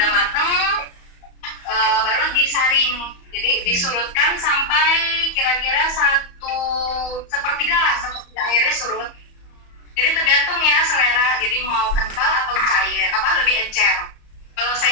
mateng, baru disaring. Jadi disurutkan sampai kira-kira 1/3 lah, 1/3 airnya surut. Jadi tergantung ya selera. Jadi mau kental atau cair, lebih encer. Kalau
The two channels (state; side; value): late; right; 34 ms